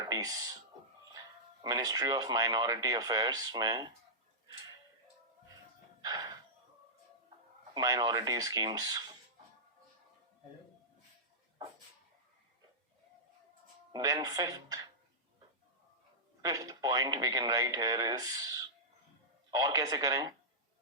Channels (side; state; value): both; normal; correlation -0.13